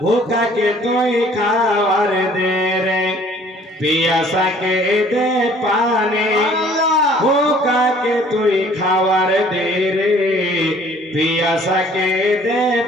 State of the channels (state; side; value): normal; both; correlation 0.55